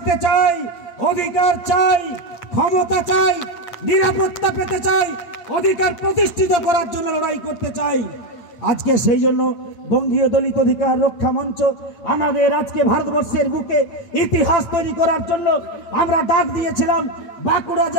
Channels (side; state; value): right; late; 8.6 ms